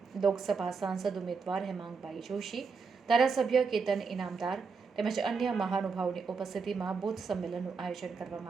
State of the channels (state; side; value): quieter; left; 5.1 dB